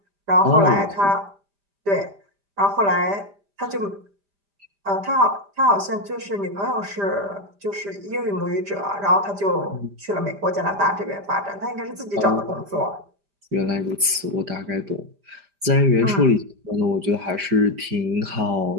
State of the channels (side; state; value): left; late; 5.0 ms